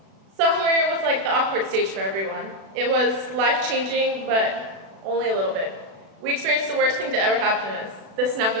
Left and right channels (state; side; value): late; left; 36 ms